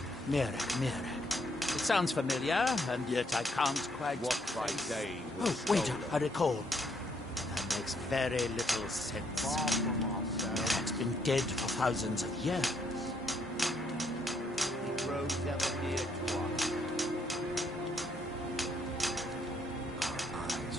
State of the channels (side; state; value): both; normal; correlation 0.72